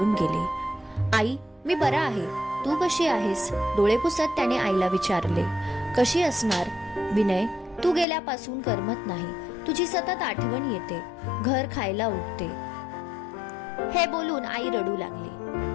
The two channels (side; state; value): right; drops out; at 8.1 s